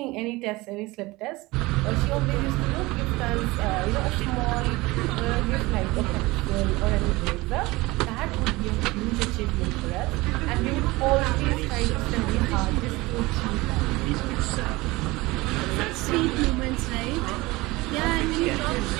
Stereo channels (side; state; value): left; quieter; 21.4 dB